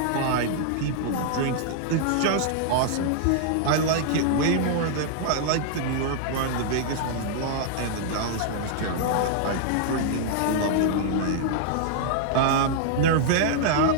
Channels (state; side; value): different; both; correlation -0.01